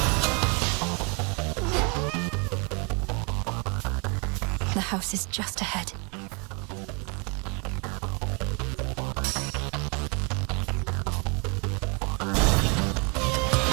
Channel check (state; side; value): quieter; left; 33.5 dB